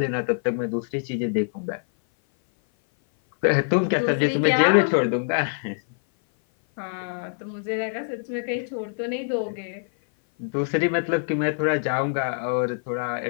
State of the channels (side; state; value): right; silent; 57 dB below the other